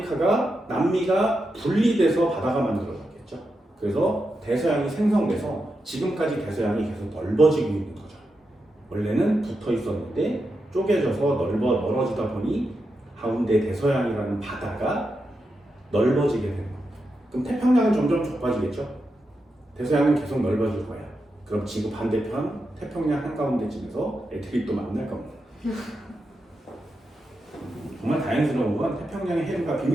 남미가 분리돼서 바다가 만들어졌겠죠. 그래서 대서양이 생성돼서 지금까지 대서양이 계속 넓어지고 있는 거죠. 원래는 붙어 있었는데 쪼개져서 멀어지다 보니 가운데 대서양이라는 바다가 넓어지게 되는 겁니다. 그럼 태평양은 점점 좁아지겠죠. 대서양은 계속 넓어질 거예요. 그럼 지구 반대편 태평양 한가운데쯤에서 애들이 또 만날 겁니다. 정말 다행스러운 건 태평양의 해류가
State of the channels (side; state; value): both; normal; correlation 0.87